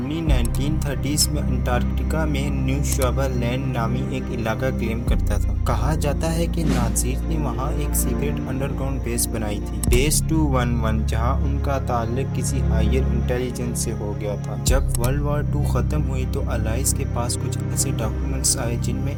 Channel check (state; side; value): identical; both; correlation 1.00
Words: 1930s میں انٹارکٹیکا میں نیو شوابا لینڈ نامی ایک علاقہ کلیم کرتا تھا۔ کہا جاتا ہے کہ نازیز نے وہاں ایک سیکرٹ انڈر گراؤنڈ بیس بنائی تھی، بیس 211، جہاں ان کا تعلق کسی ہائر انٹیلیجنس سے ہو گیا تھا۔ جب ورلڈ وار 2 ختم ہوئی تو الائز کے پاس کچھ ایسے ڈاکومنٹس آئے جن میں